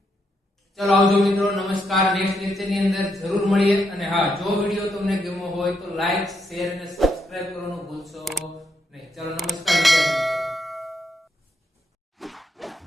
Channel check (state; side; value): normal; both; correlation 0.79